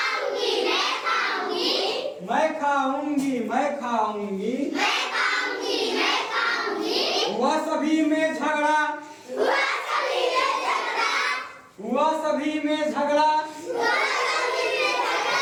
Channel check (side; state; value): both; identical; correlation 1.00